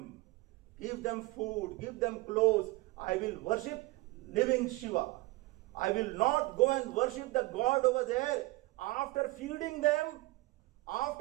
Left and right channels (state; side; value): quieter; left; 21.5 dB